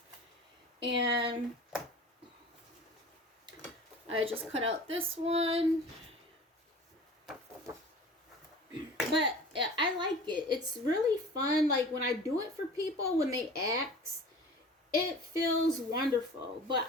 And I just cut out this one. But I like it. It's really fun. Like when I do it for people, when they ask, it feels wonderful. But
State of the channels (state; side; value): normal; both; correlation 0.40